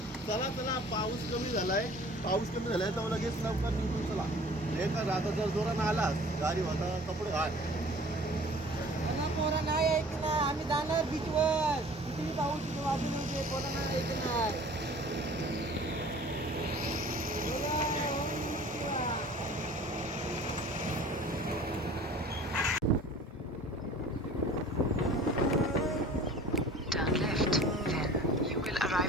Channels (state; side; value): normal; both; correlation 0.47